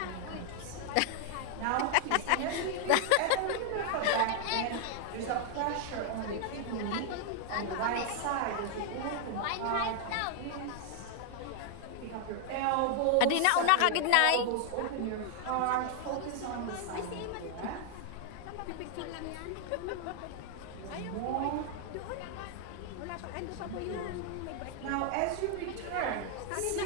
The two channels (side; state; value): both; different; correlation 0.00